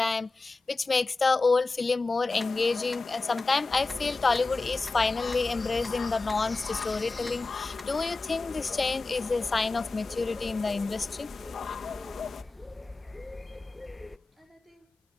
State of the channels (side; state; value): right; quieter; 3.7 dB